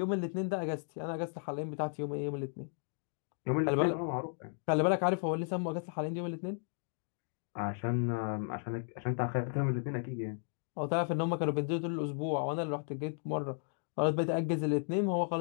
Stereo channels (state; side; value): silent; right; digital silence